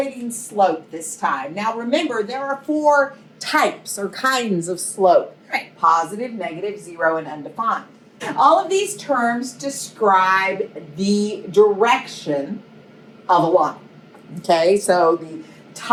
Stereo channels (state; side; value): identical; both; correlation 1.00